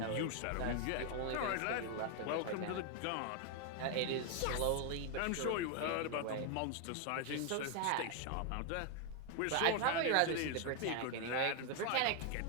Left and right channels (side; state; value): both; different; correlation 0.01